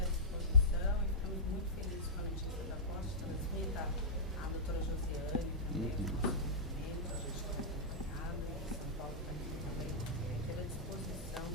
disposição e ficamos muito felizes com a notícia da posse. Transmita a doutora Josiane também, a gente está acompanhado, São Paulo também ter à disposição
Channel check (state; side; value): normal; both; correlation -0.13